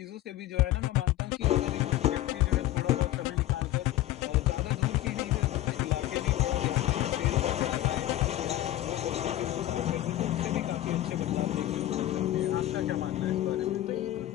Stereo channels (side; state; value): right; quieter; 14.4 dB